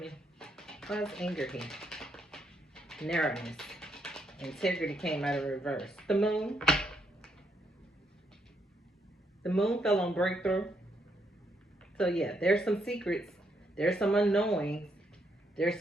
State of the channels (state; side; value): normal; both; correlation 0.76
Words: Why's anger here? Narrowness. Integrity came out of reverse. The moon. The moon fell on breakthrough. So yeah, there's some secrets. There's some unknowing. There's